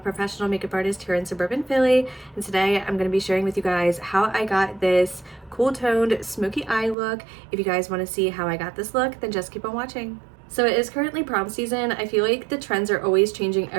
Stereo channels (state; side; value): drops out; left; at 7.0 s